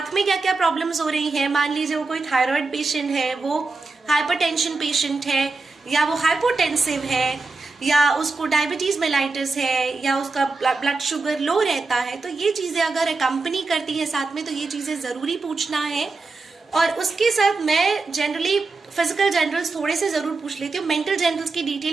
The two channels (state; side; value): quieter; left; 3.9 dB